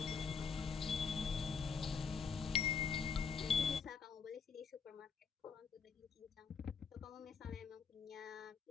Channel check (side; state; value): right; quieter; 5.8 dB